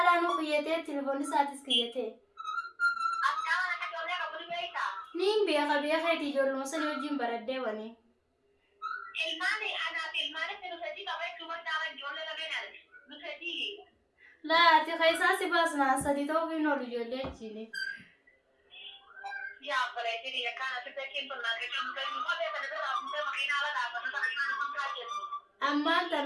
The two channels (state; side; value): identical; both; correlation 1.00